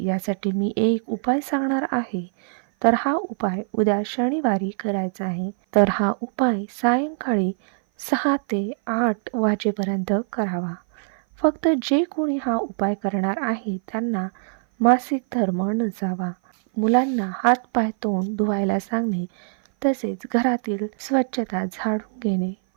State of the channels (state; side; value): silent; left; 57 dB below the other